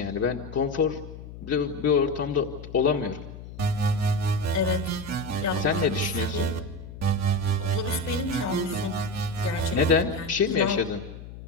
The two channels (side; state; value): left; noise; hum, 13 dB below the sound